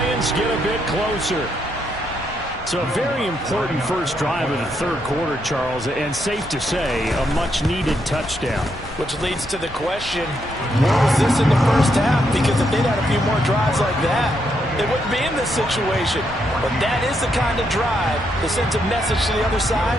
get a bit closer. So a very important first drive of the 3rd quarter, Charles, and safe to say, a much-needed touchdown. Which leads to the question, where was this in the 1st half? Because if they'd had a few more drives like that, they wouldn't be in this situation. But that is the kind of drive that sends a message to the other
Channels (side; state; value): both; normal; correlation 0.78